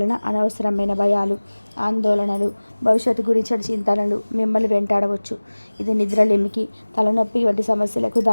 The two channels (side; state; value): both; inverted; correlation -1.00